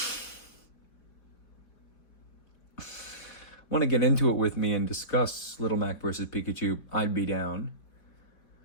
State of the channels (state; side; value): late; right; 4.8 ms